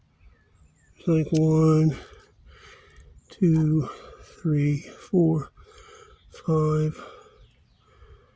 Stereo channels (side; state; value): both; identical; correlation 1.00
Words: It's like 1, 2, 3, 4, 5.